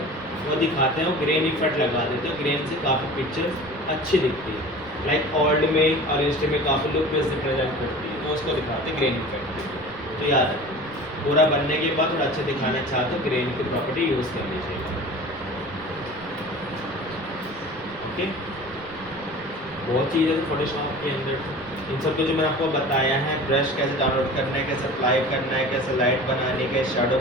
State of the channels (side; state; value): right; noise; rumble, 21 dB below the sound